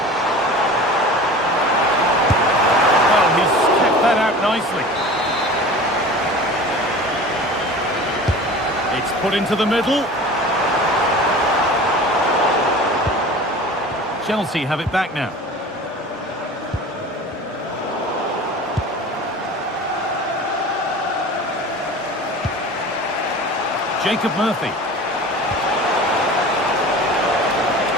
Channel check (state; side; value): normal; both; correlation 0.38